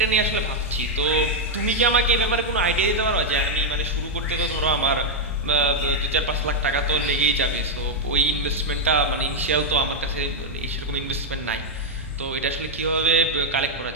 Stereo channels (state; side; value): normal; both; correlation 0.00